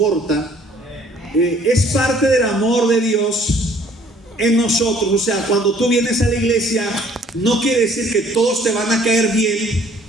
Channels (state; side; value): normal; both; correlation 0.58